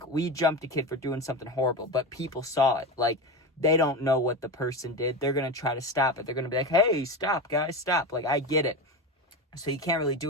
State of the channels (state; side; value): normal; both; correlation 0.22